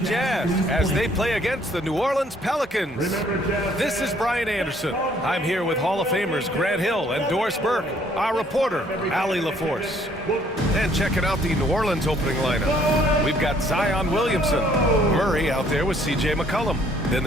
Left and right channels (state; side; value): normal; both; correlation 0.63